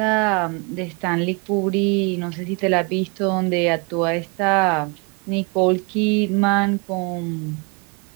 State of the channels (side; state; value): left; quieter; 32.2 dB